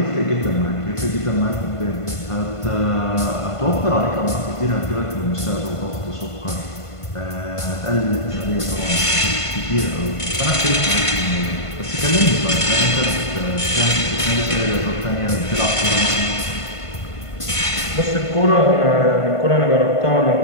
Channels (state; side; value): late; right; 1.5 ms